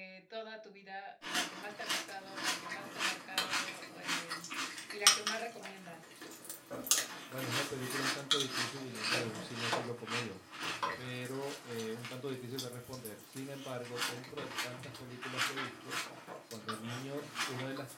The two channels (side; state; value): both; identical; correlation 1.00